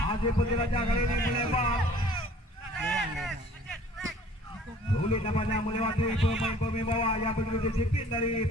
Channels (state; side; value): normal; both; correlation 0.52